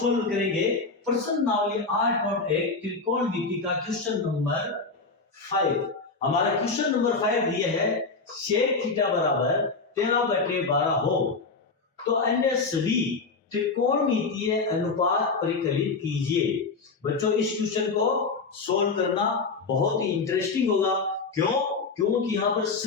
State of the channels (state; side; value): quieter; right; 4.2 dB